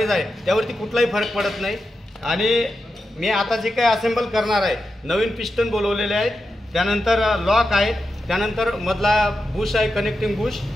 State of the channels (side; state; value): both; normal; correlation 0.89